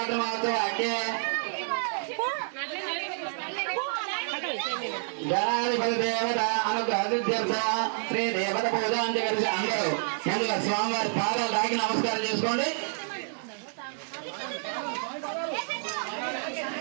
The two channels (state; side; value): silent; left; digital silence